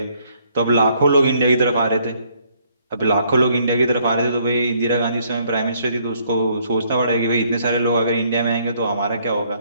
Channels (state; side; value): inverted; both; correlation -0.66